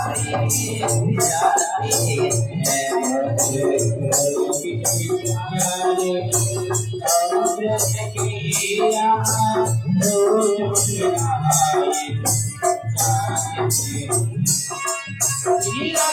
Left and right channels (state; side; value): identical; both; correlation 1.00